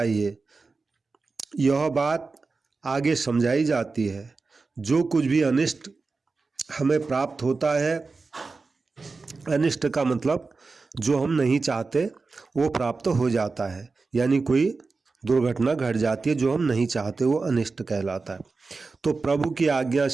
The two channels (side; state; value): left; quieter; 4.1 dB